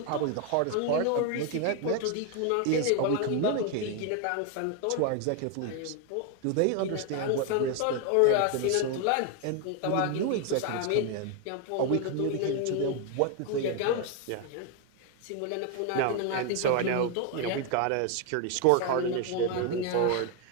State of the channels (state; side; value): different; both; correlation 0.01